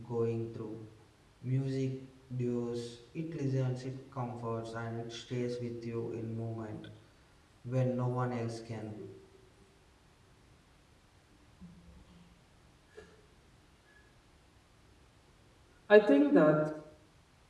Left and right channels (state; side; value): identical; both; correlation 1.00